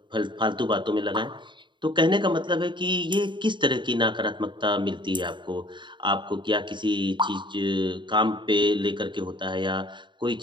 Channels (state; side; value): late; left; 0.23 ms